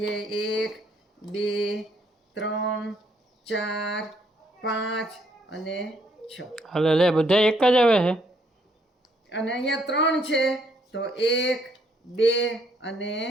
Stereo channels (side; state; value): both; normal; correlation 0.69